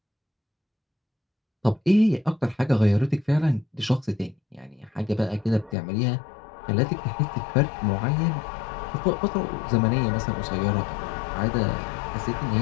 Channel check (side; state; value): right; drops out; at 5.8 s